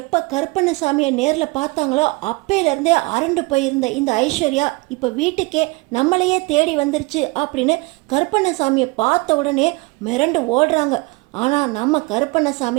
கருப்பண்ணசாமியை நேரில் பார்த்தாங்களோ அப்பையிலேருந்தே அரண்டு போயிருந்த இந்த ஐஸ்வர்யா இப்போ வீட்டுக்கே நம்மளையே தேடி வந்துருச்சு அப்படின்னு கருப்பண்ணசாமியை பார்த்த உடனே மிரண்டு ஓடுறாங்க. ஆனால் நம்ம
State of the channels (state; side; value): quieter; left; 25.9 dB